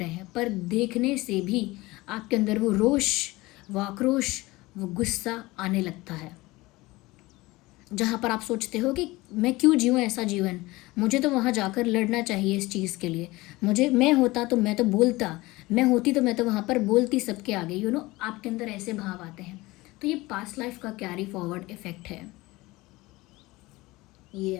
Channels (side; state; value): right; quieter; 20.7 dB